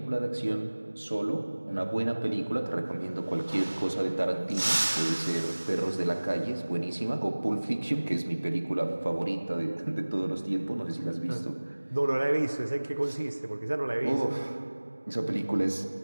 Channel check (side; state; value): both; inverted; correlation -1.00